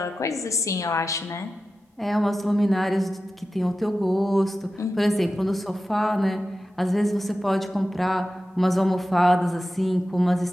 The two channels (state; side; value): normal; both; correlation 0.93